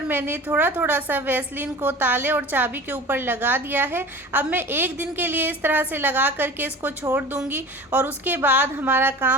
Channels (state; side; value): normal; both; correlation 0.38